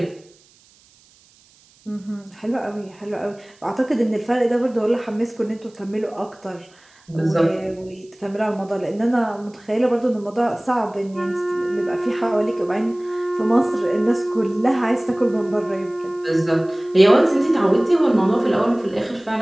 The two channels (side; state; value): right; noise; hiss, 30 dB below the sound